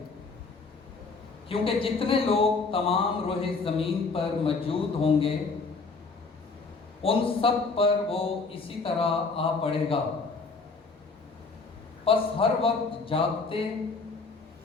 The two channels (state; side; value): quieter; right; 4.2 dB